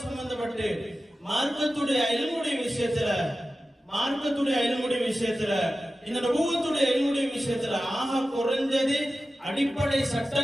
சம்பந்தப்பட்டு மார்க்கத்துடைய இல்முடைய விஷயத்துல இந்த நபுவத்துடைய இல்முடைய விஷயத்துல ஆக குறைஞ்சது அடிப்படை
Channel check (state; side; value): normal; both; correlation 0.94